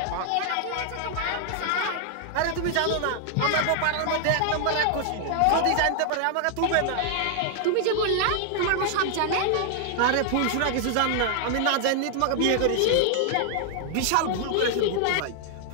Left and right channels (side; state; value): both; different; correlation 0.00